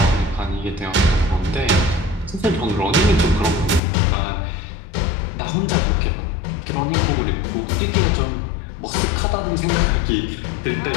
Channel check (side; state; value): right; drops out; at 3.8 s